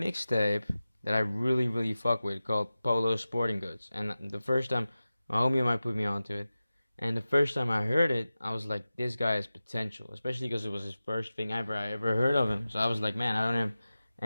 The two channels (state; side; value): inverted; both; correlation -0.95